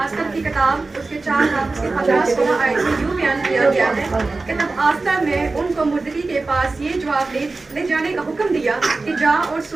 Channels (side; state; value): left; quieter; 3.6 dB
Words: की किताब उसके 4 बाब उसके 15-16 आयत में यूं बयान किया गया है कि तब आस्तर ने उनको मुर्दकी के पास ये जवाब ले जाने का हुक्म दिया कि जा और